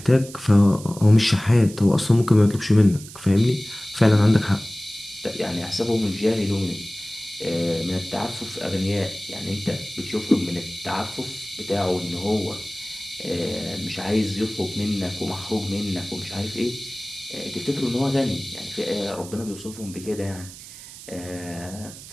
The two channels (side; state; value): right; noise; hiss, 16 dB below the sound